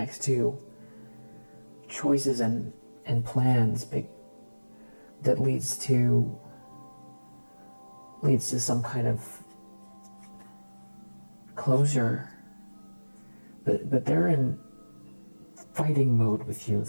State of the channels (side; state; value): both; inverted; correlation -1.00